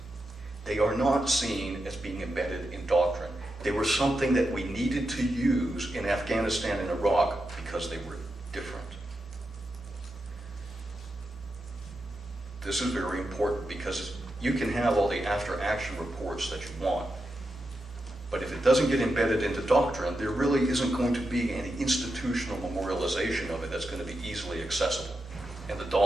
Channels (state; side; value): normal; both; correlation 0.88